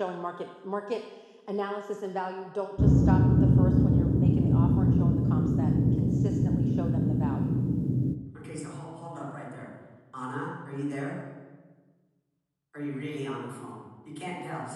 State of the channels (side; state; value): both; identical; correlation 1.00